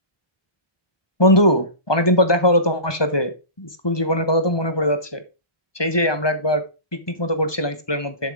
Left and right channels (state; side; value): late; right; 1.2 ms